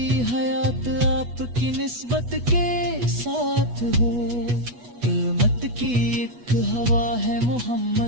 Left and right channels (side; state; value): left; late; 8.2 ms